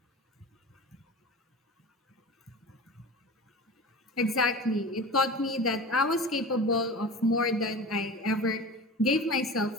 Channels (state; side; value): normal; both; correlation 0.33